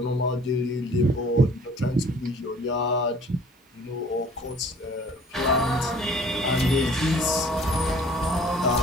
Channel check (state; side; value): normal; both; correlation 0.52